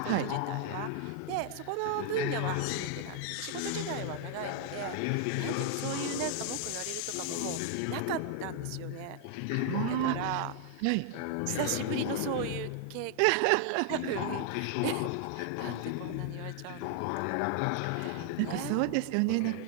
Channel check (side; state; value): both; different; correlation 0.00